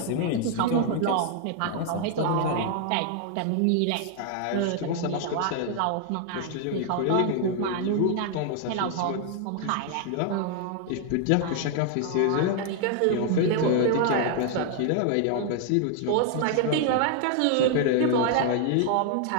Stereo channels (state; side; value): different; both; correlation 0.00